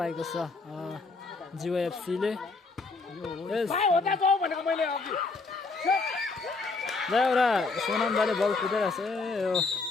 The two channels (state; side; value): quieter; right; 3.9 dB